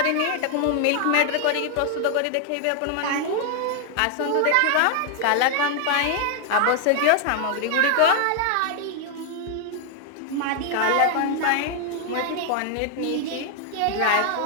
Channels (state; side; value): different; both; correlation 0.00